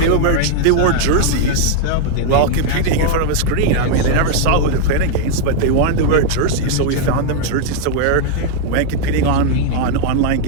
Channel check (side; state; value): both; different; correlation 0.00